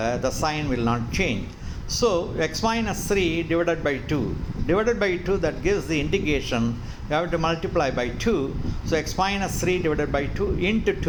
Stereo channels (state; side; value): identical; both; correlation 1.00